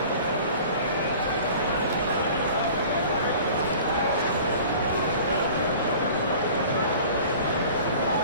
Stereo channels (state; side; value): inverted; both; correlation -0.44